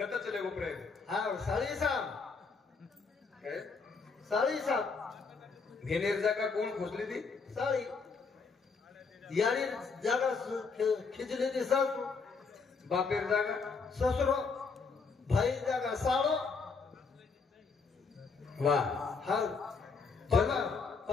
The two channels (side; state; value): right; quieter; 4.8 dB